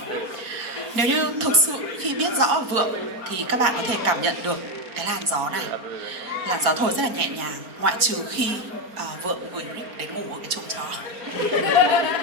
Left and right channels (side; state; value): left; late; 4.4 ms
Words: Nếu như thực sự khi biết rõ Vượng thì các bạn có thể cảm nhận được cái làn gió này. Làn gió thổi rất là nhẹ nhàng, ngoại trừ khi Vượng gửi Rick đến ngủ ở cái chuồng chó.